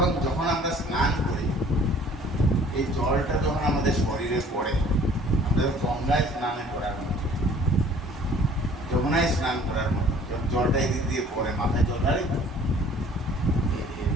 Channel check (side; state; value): both; normal; correlation 0.53